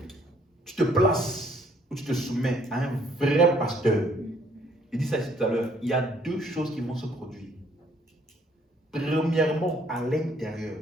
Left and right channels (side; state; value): both; normal; correlation 0.64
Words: te places ou tu te soumets à un vrai pasteur, il dit ça ici tout à l'heure, il y a deux choses qui vont se produire. Premièrement, à l'intérieur,